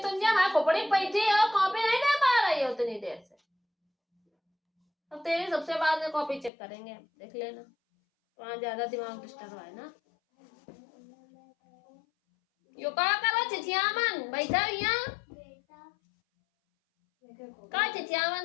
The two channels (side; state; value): right; drops out; at 6.5 s